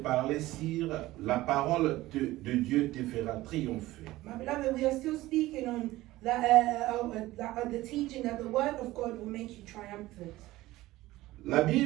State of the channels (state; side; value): quieter; left; 17.4 dB